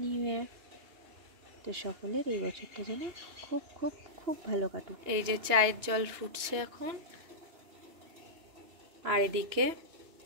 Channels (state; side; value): late; left; 2.9 ms